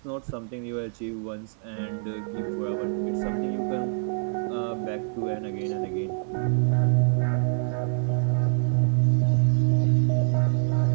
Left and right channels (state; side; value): silent; left; 59 dB below the other